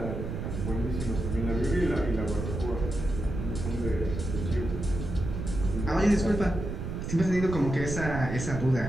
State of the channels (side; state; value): right; noise; rumble, 5 dB below the sound